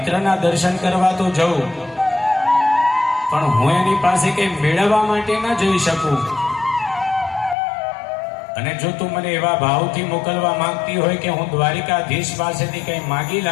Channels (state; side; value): drops out; right; at 7.6 s